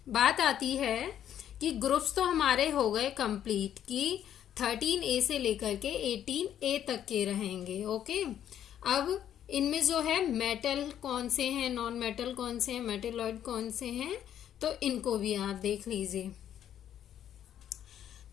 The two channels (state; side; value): quieter; right; 10.3 dB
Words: बात आती है कि ग्रुप्स तो हमारे हो गए कंप्लीट, कि 13A से लेकर के 18A तक के रहेंगे। ओके, अब इनमें जो है मेटल कौन से हैं, नॉन मेटल कौन से हैं, मेटेलॉइड कौन से हैं, तो इनको भी आप देख लीजिए।